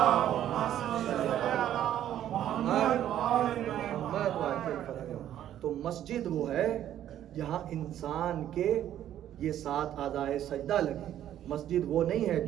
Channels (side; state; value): left; quieter; 11.4 dB